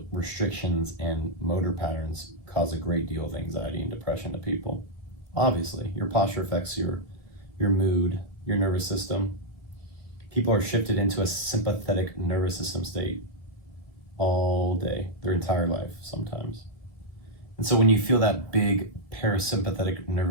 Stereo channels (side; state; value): left; late; 1.6 ms